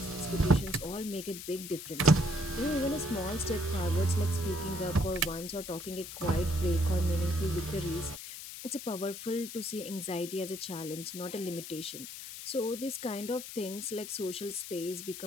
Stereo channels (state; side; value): noise; left; hiss, 10 dB below the sound